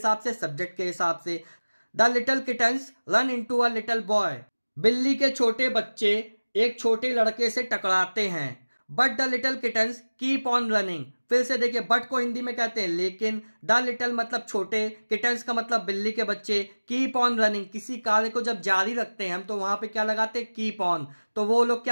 से? सब्जेक्ट के हिसाब से। The little kittens run into a little boy, बिल्ली के छोटे बच्चे एक छोटे लड़के से टकराते हैं। But the little kittens keep on running. फिर से देखिए, बट को हिंदी में कहते हैं लेकिन, द लिटिल मतलब छोटे, किटन्स का मतलब बिल्ली के बच्चे, कीप ऑन रनिंग किसी कार्य को जब जारी रखते हैं हम तो वहां पे क्या लगाते हैं, कीप ऑन। तो वो लोग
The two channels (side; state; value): both; inverted; correlation -1.00